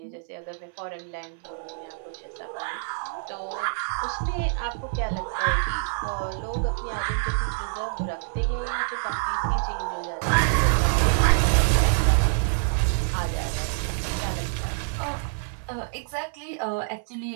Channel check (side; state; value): left; silent; 58 dB below the other